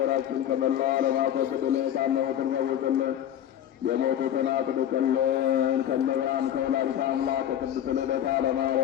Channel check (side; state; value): right; quieter; 10.7 dB